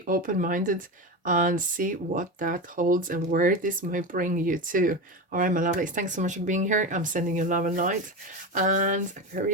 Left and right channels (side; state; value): both; normal; correlation 0.21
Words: open-minded, and see what that holds and where this might bring you to. All right, my lovelies, thanks so much for being here. I'm sending you love and light, and